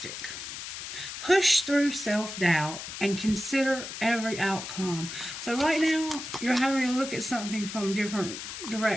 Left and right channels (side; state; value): left; noise; hiss, 8 dB below the sound